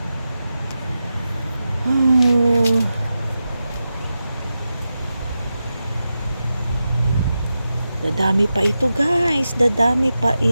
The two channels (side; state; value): both; inverted; correlation -0.91